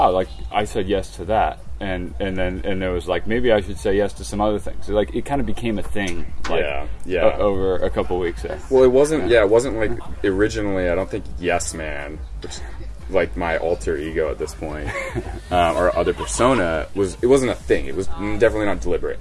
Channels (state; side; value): identical; both; correlation 1.00